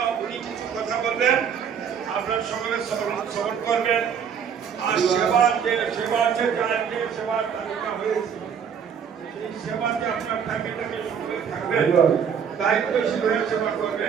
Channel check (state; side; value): quieter; left; 7.4 dB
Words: উনি কিছু কথা বলবেন, আপনার সকলে শ্রবণ করবেন। আর সেবার যে সেবার তালিকা হয়েছে সেই সেবাতে আপনার ফ্যামিলিটাকে সকলে থাকবেন, দায়িত্বশীল হয়ে সেবা